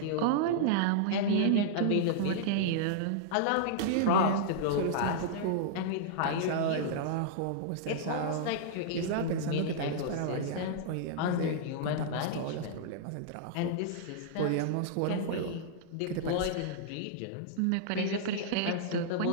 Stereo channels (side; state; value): both; different; correlation -0.02